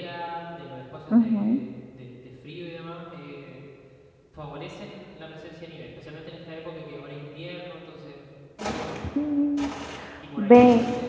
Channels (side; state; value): both; identical; correlation 1.00